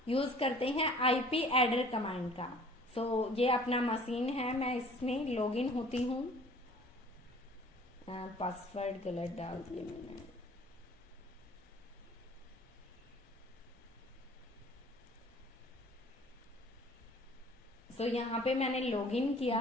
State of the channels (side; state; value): both; normal; correlation 0.51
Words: यूज करते हैं आईपी एडर कमांड का। सो ये अपना मशीन है, मैं इसमें लॉगिन होती हूँ। पासवर्ड गलत डाल दिया मैंने। सो यहाँ पे मैंने लॉगिन किया।